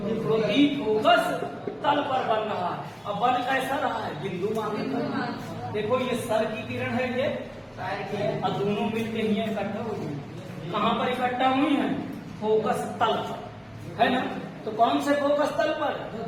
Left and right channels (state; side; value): identical; both; correlation 1.00